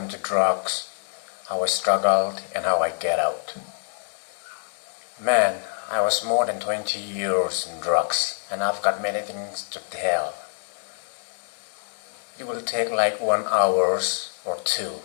drugs, how I struggled, and how I get out. Man, I was more than 20 years in drugs, and I've got many things to tell. It will take like 1 hour or 2,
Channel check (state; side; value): silent; right; 61 dB below the other